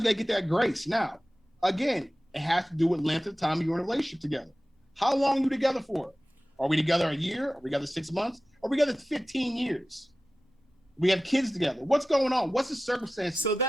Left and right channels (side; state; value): both; normal; correlation 0.95